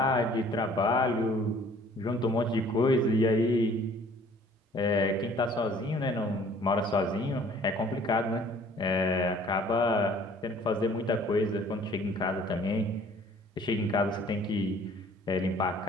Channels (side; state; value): both; normal; correlation 0.54